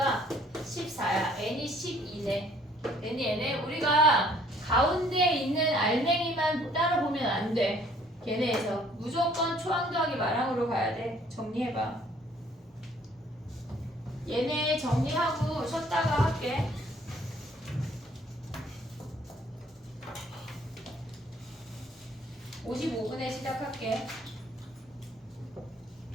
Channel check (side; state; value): both; normal; correlation 0.60